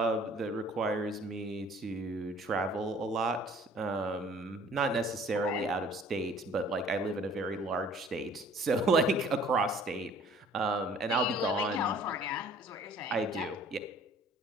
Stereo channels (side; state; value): both; normal; correlation 0.53